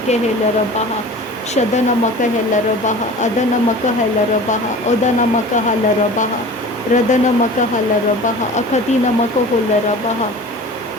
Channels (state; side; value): normal; both; correlation 0.39